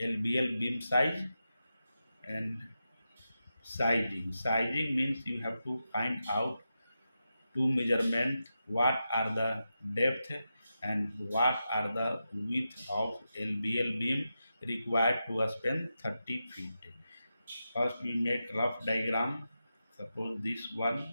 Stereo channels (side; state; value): both; inverted; correlation -0.89